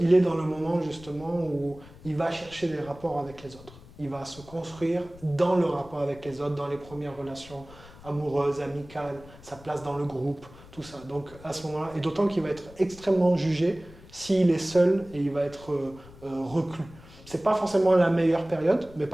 est dans le moment justement où il va chercher des rapports avec les autres. Il va se construire dans le rapport avec les autres, dans les premières relations amoureuses, amicales, sa place dans le groupe, tout ça. Donc à ce moment-là, et d'autant qu'il va être extrêmement jugé s'il est seul et il va être reclus. C'est pas forcément la meilleure période, mais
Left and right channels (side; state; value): left; noise; rumble, 20 dB below the sound